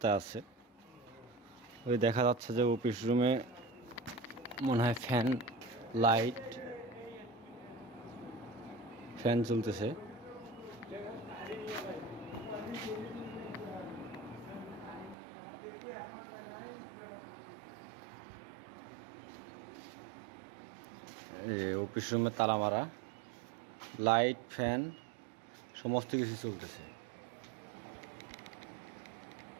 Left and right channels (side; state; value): left; drops out; at 15.2 s